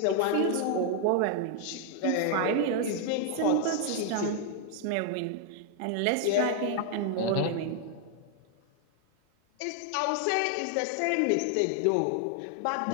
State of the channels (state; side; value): different; both; correlation 0.00